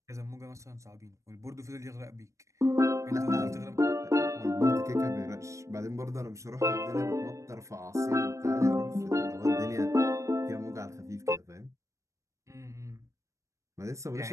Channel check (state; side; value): late; left; 0.15 ms